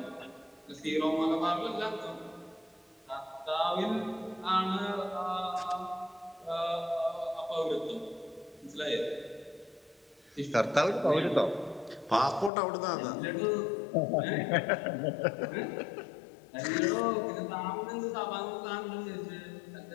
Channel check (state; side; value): drops out; right; at 12.5 s